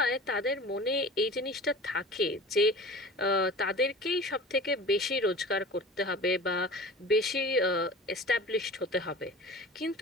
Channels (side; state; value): both; normal; correlation 0.39